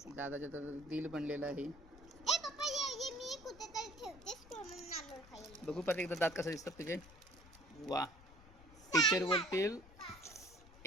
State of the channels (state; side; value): noise; left; rumble, 20 dB below the sound